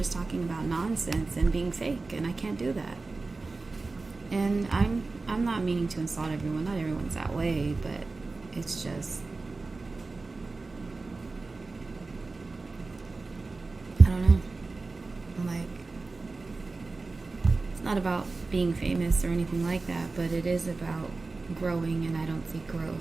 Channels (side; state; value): left; quieter; 3.7 dB